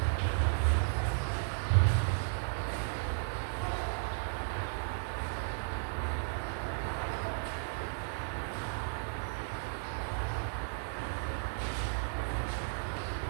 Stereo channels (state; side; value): silent; left; 55 dB below the other